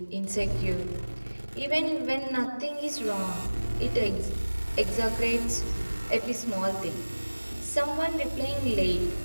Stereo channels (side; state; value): both; inverted; correlation -1.00